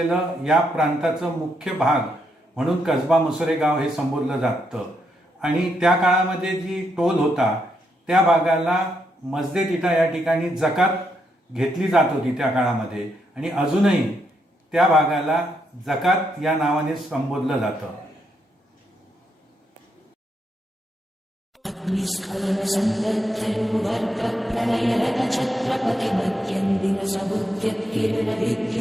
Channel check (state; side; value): normal; both; correlation 0.79